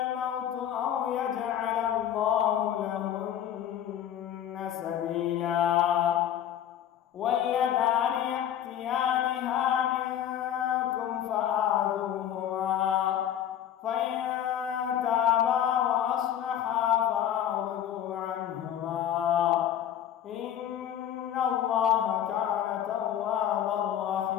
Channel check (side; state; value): right; quieter; 10.4 dB